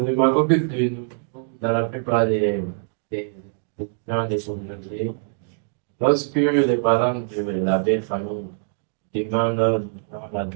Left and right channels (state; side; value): silent; left; digital silence